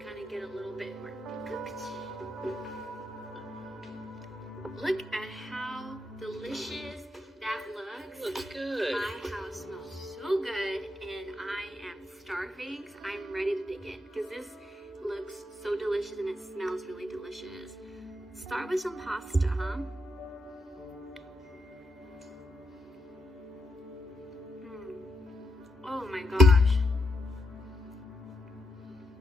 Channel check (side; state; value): both; normal; correlation 0.82